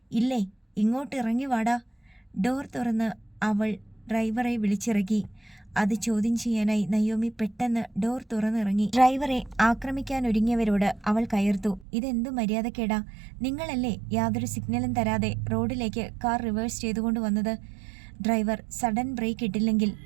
ഇല്ലേ, ഇങ്ങോട്ട് ഇറങ്ങി വാടാ. ഡോർ തുറന്ന് അവൾ ഡ്രൈവറെ വിളിച്ചിറക്കി. അത് ചോദ്യം ചെയ്യാനായി നയോമി പെട്ടെന്ന് ഡോർ തുറന്നിറങ്ങി. ഡ്രൈവറെ ആക്രമിക്കാനൊരുങ്ങിയവരോട് അവൾ കയർത്തു. ഇതെന്തു മര്യാദക്കേടാ? നിങ്ങളല്ലേ യാതൊരു സിഗ്നലും തരാതെ റോഡിലേക്ക് കാർ റിവേഴ്സ് ചെയ്തുകൊണ്ട് വന്നത്? ഡ്രൈവർ സഡൻ ബ്രേക്ക് ഇട്ടില്ലെങ്കിൽ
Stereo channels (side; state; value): left; drops out; at 11.9 s